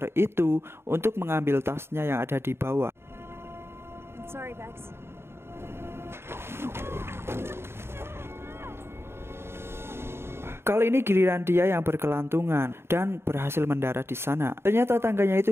itu untuk mengambil tasnya yang ada di bawah. I'm sorry, Bex. Kali ini giliran dia yang berkelantungan dan berhasil mendarat di sana. Ternyata tangganya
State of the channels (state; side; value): late; left; 0.12 ms